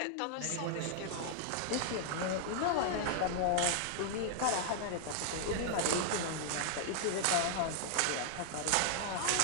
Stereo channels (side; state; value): both; different; correlation -0.01